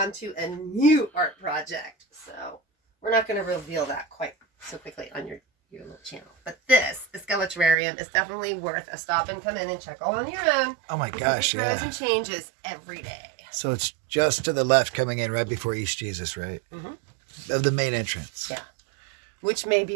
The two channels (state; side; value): drops out; left; at 7.8 s